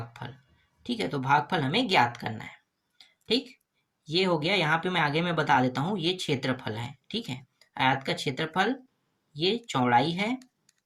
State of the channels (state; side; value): identical; both; correlation 1.00